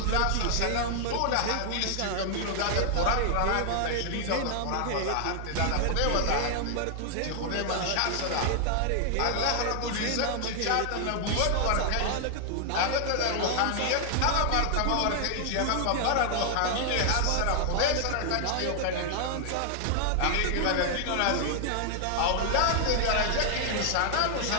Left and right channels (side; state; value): both; different; correlation 0.00